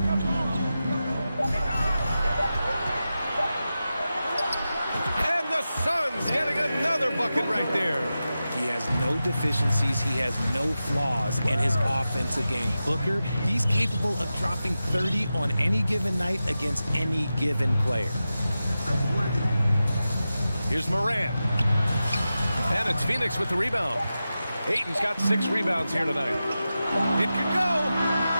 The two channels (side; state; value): both; inverted; correlation -0.92